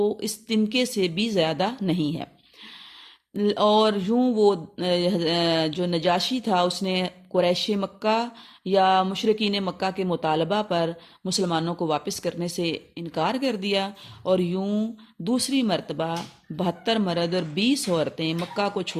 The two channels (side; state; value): both; identical; correlation 1.00